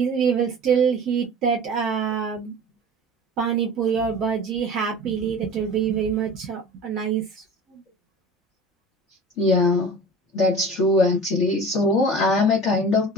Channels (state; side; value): normal; both; correlation 0.39